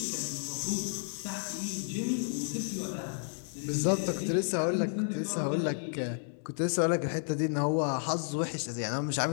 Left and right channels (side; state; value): right; silent; digital silence